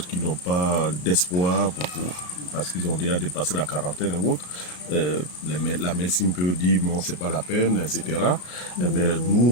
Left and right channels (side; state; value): right; late; 33 ms